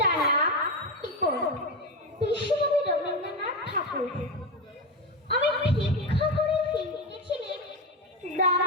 নাম টিপন, বিশ্বকবি রবীন্দ্রনাথ ঠাকুর। আমি ভিক্ষা করে ফিরতেছিলাম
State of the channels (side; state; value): both; normal; correlation 0.14